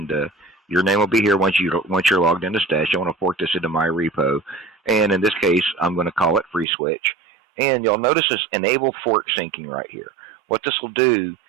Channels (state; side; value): drops out; left; at 6.7 s